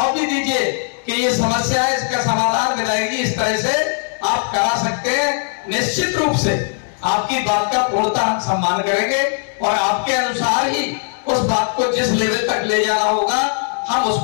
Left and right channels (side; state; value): right; silent; digital silence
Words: भी दीजिए कि ये समस्या है, इसका समाधान मिलेगी, इस तरह से आप करा सकते हैं। निश्चित रूप से आपकी बात का पूर्णतः हम सम्मान करेंगे और आपके अनुसार ही उस बात को जिस लेवल तक ले जाना होगा हम